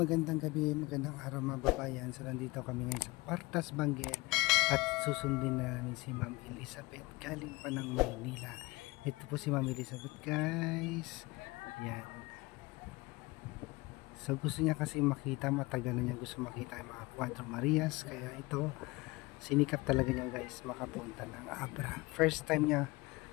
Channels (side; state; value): right; quieter; 22.9 dB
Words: gabi, magandang araw mga babayan. So nandito kami ngayon sa Partas Benguet at susundin namin si Ma'am Elizabeth galing pa ng Maynila. Ito po si Ma'am Elizabeth, guys. Yan. So gusto niya kasi makita, matagal na niya gusto makita yung mga Cuatro Marias. Kaya ito, sinikap talaga niya, guys, makapunta ng Abra. First time niya